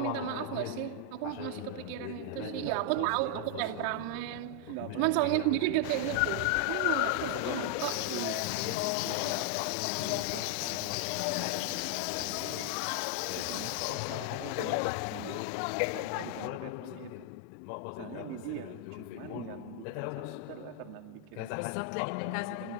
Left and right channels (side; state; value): both; different; correlation 0.00